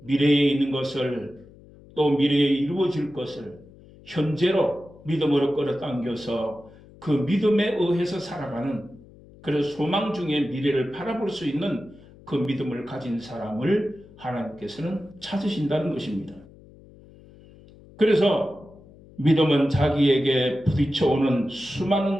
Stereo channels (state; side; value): noise; left; hum, 23 dB below the sound